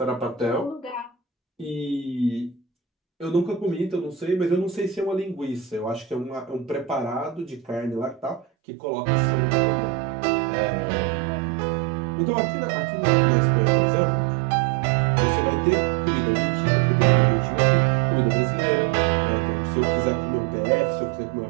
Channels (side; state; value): left; drops out; at 8.5 s